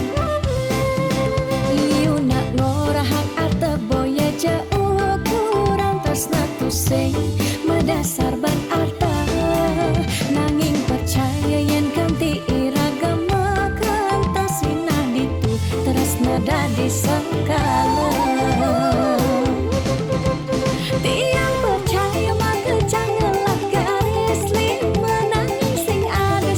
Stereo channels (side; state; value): both; identical; correlation 1.00